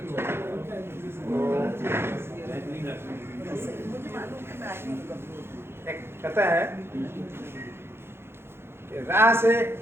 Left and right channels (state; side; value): late; left; 0.12 ms